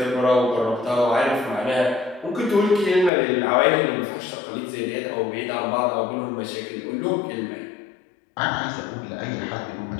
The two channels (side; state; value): right; drops out; at 3.1 s